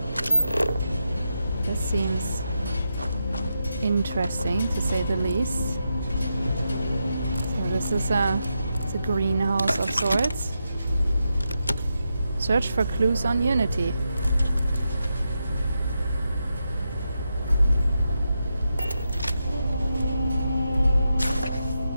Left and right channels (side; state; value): both; inverted; correlation -0.86